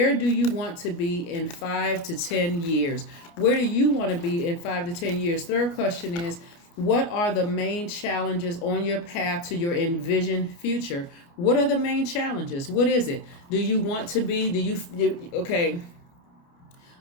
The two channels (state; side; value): late; right; 29 ms